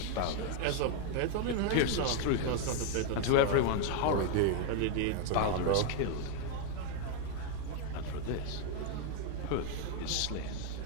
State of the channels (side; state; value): both; different; correlation 0.00